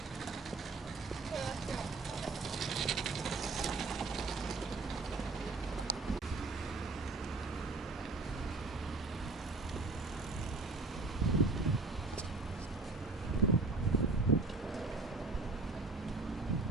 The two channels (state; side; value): quieter; left; 3.7 dB